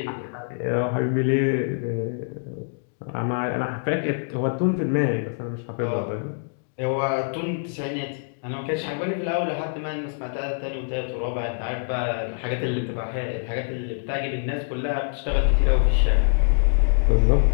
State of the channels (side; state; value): right; silent; digital silence